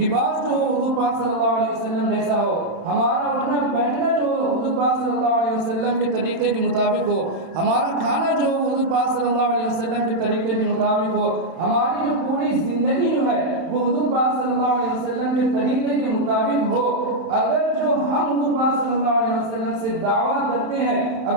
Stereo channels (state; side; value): late; left; 31 ms